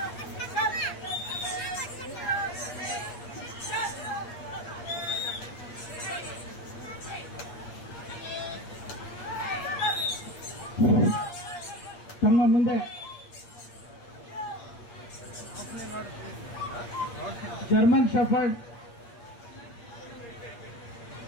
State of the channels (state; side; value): late; right; 8.5 ms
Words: ತಮ್ಮ ಮುಂದೆ ಜರ್ಮನ್ ಶೆಫರ್ಡ್